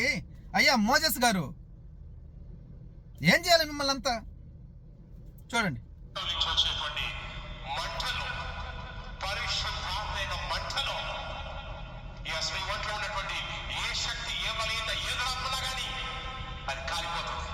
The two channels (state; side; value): identical; both; correlation 1.00